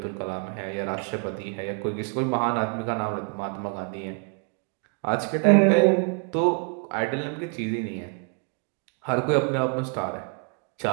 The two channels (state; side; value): quieter; left; 40.0 dB